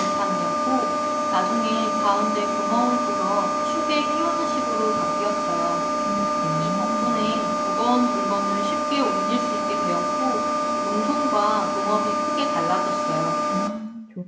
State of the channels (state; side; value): identical; both; correlation 1.00